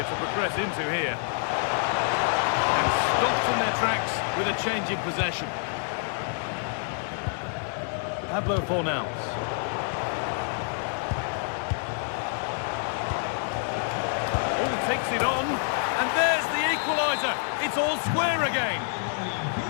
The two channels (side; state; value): right; silent; 58 dB below the other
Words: to progress into here. And stopped in their tracks with a change in possession. Pablo Fornals. Oh, takes it on. And there's the equaliser. It's all square again.